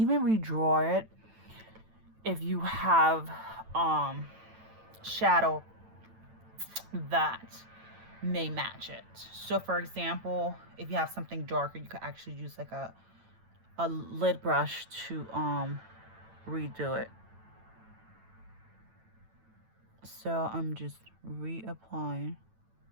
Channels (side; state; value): left; late; 9.1 ms